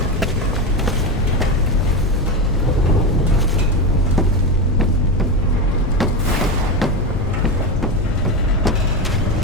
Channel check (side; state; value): left; noise; rumble, 5 dB below the sound